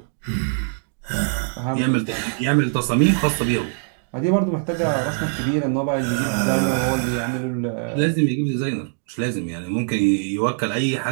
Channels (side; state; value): left; silent; 64 dB below the other